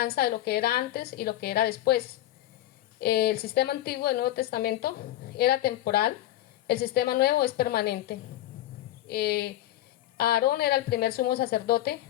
de lo que era antes y lo que era después. El sistema antiguo del Nuevo Testamento era temporal, el sistema nuevo es permanente. Aarón era el primer sumo sacerdote,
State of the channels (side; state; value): right; quieter; 14.4 dB